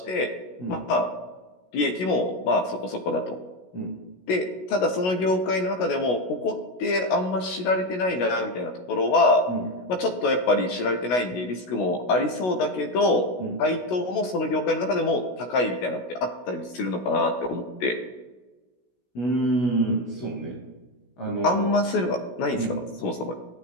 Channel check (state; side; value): late; right; 16 ms